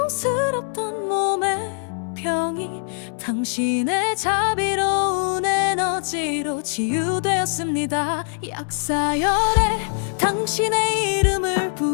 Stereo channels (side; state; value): right; silent; 64 dB below the other